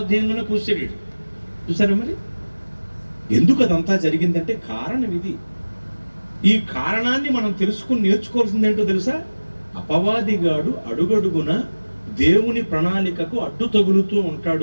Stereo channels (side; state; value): both; inverted; correlation -1.00